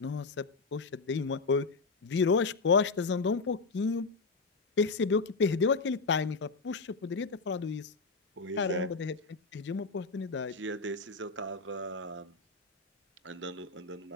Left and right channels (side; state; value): right; quieter; 4.1 dB